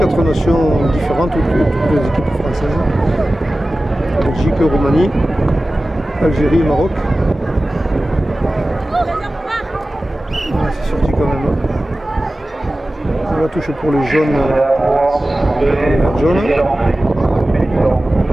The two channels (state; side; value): normal; both; correlation 0.96